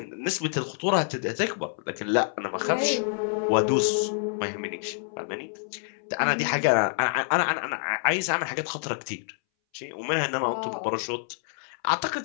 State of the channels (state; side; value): silent; right; 60 dB below the other